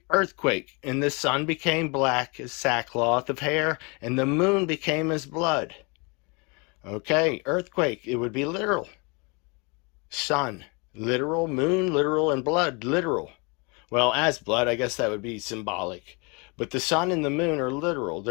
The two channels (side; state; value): right; quieter; 30.6 dB